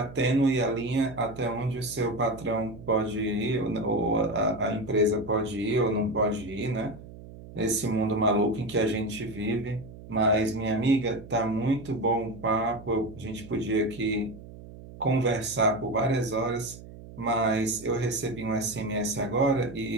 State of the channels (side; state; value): right; noise; hum, 16 dB below the sound